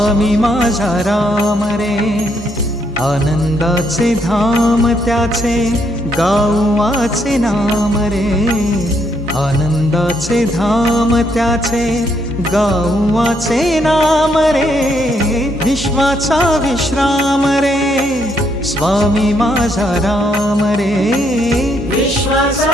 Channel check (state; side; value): normal; both; correlation 0.74